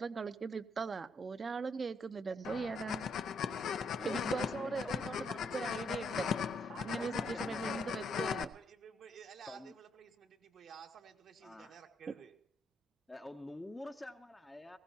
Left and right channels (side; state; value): both; normal; correlation 0.73